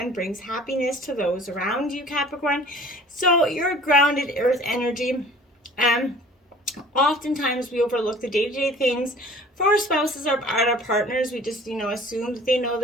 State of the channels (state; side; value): normal; both; correlation 0.48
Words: brings happiness to those around you, Capricorn. So you're grounded earth energy. Oftentimes we overlook the day-to-day things for our spouses or our partners. We just, assume that they know